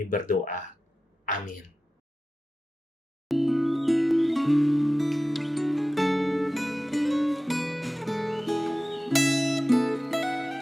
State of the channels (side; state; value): both; normal; correlation 0.95